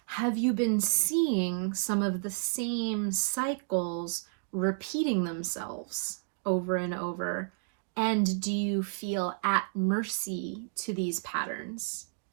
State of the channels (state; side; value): silent; left; digital silence